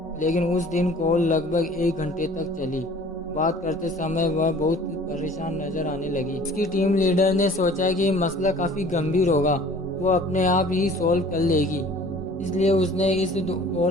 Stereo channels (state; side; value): normal; both; correlation 0.49